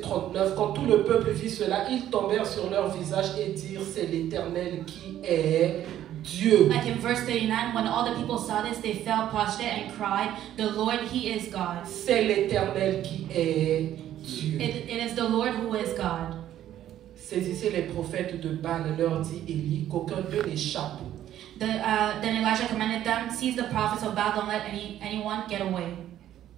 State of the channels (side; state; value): left; quieter; 11.9 dB